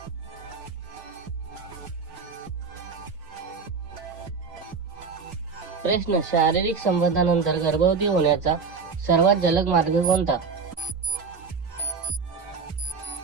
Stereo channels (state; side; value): quieter; left; 5.1 dB